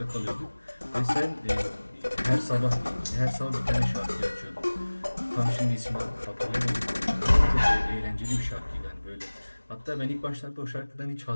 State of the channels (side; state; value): both; inverted; correlation -1.00